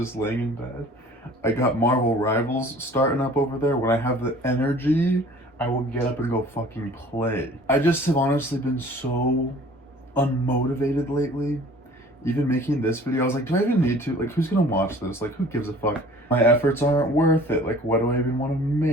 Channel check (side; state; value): both; normal; correlation 0.49